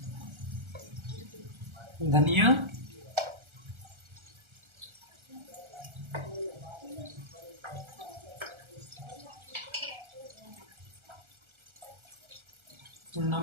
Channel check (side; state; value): left; late; 1.3 ms